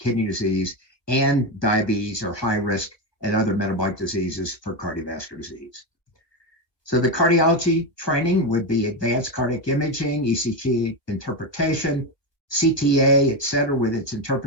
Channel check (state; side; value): late; right; 1.3 ms